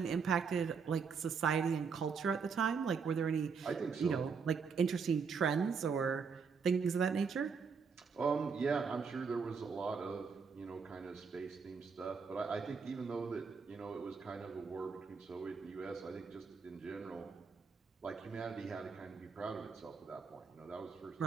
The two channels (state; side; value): quieter; left; 5.6 dB